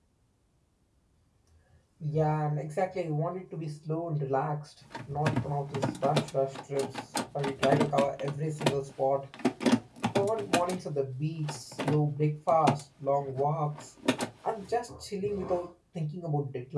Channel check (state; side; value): identical; both; correlation 1.00